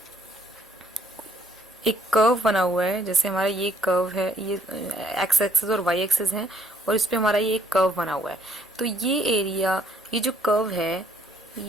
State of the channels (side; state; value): both; normal; correlation 0.66